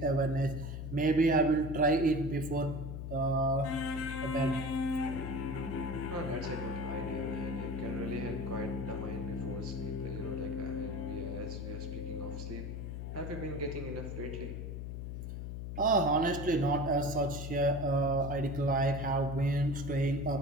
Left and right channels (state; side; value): noise; left; hum, 6 dB below the sound